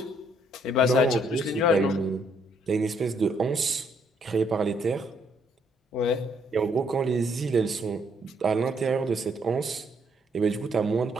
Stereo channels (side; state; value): both; normal; correlation 0.70